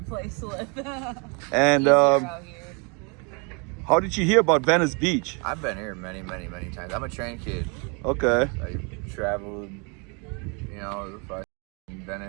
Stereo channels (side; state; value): left; quieter; 33.3 dB